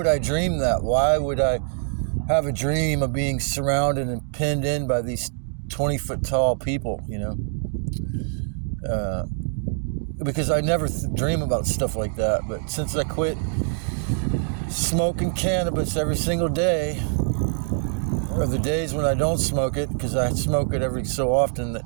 I dream that? Why would I have a dream of being surrounded and pinned in by these 20-foot tall people, because I never dream about stuff like that. But since I quit smoking cannabis every single day, or the days when I don't smoke it, because I smoke it every so often, that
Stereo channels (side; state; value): left; silent; 62 dB below the other